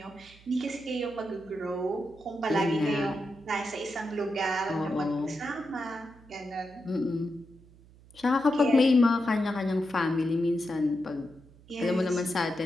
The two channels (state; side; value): noise; right; hum, 24 dB below the sound